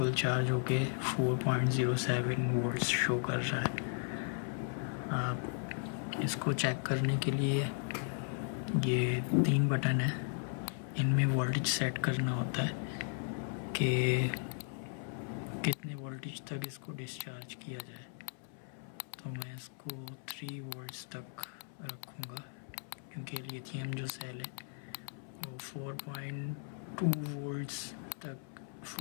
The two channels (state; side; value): silent; right; 54 dB below the other